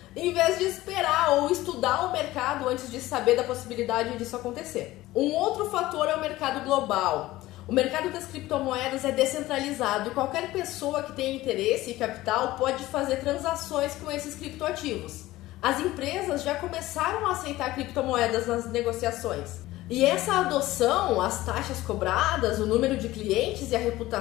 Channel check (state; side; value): quieter; right; 17.1 dB